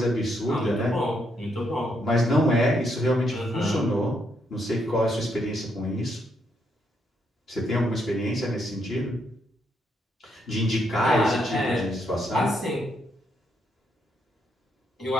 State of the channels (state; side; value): normal; both; correlation 0.76